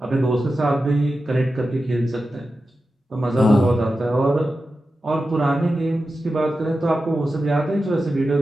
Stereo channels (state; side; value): normal; both; correlation 0.92